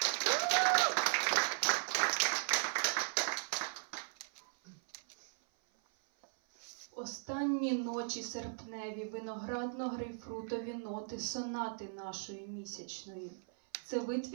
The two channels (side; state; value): left; silent; 53 dB below the other